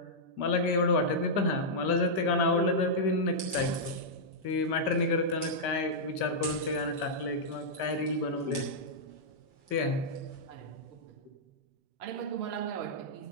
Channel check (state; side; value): late; left; 5.2 ms